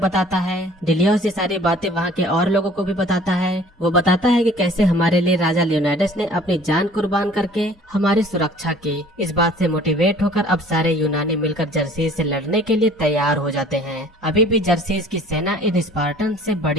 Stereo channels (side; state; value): both; normal; correlation 0.51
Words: बताता है। डिलियोस ये सारी बातें वहाँ के और लोगों को भी बताता है। वो बताता है कि कैसे हमारे लिए राजा लियोनाइडस ने अपनी जान कुर्बान करके हमारी सुरक्षा की। इस बात से मोटिवेट होकर अब सारे यूनानी मिलकर जर्सीस से लड़ने के लिए तैयार हो जाते हैं। अभी भी जर्सीस की सेना इन स्पार्टन से